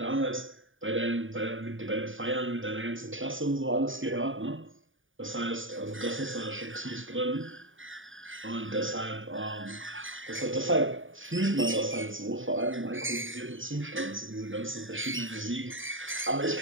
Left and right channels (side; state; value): left; late; 0.57 ms